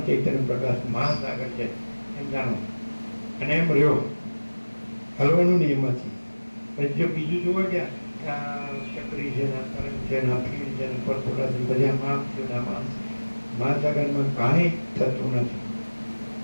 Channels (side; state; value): both; inverted; correlation -1.00